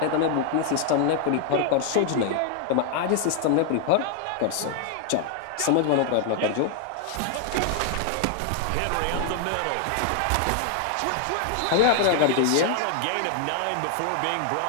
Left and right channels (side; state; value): both; different; correlation 0.00